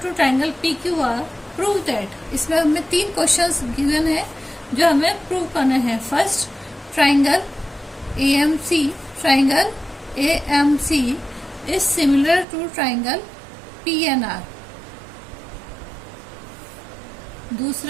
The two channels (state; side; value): drops out; left; at 12.5 s